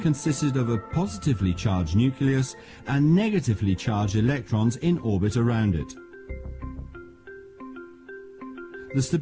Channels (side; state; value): both; identical; correlation 1.00